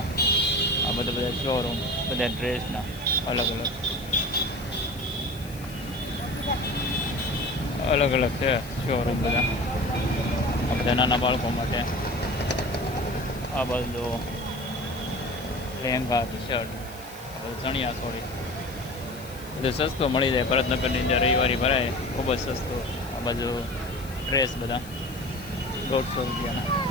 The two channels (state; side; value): noise; left; hiss, 19 dB below the sound